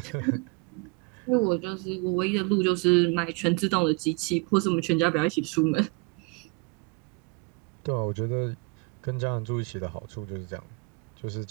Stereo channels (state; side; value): quieter; left; 30.0 dB